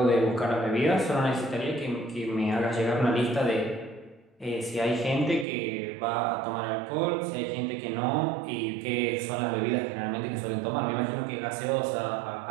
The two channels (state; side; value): drops out; left; at 5.5 s